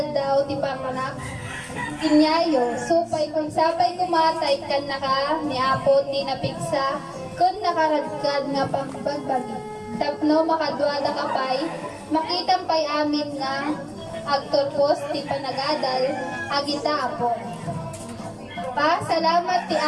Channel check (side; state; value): both; identical; correlation 1.00